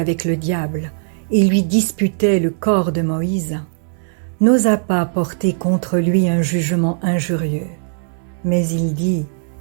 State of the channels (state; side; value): silent; left; digital silence